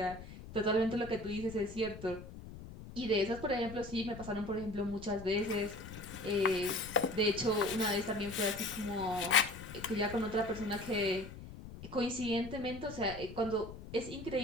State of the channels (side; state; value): left; noise; rumble, 13 dB below the sound